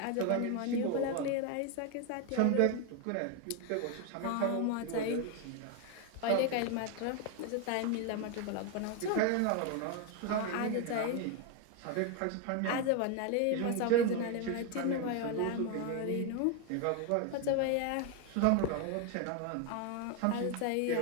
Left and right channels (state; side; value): different; both; correlation 0.01